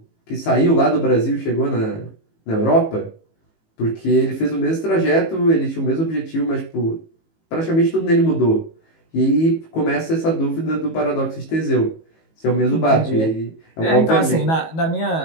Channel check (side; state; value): right; late; 18 ms